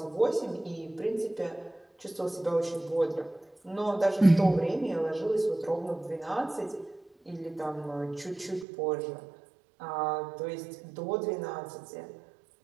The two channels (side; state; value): left; drops out; at 8.7 s